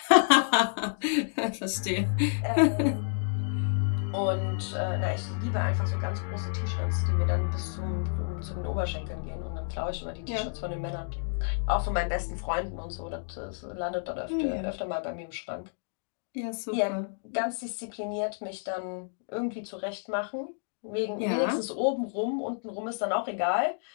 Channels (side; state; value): right; silent; digital silence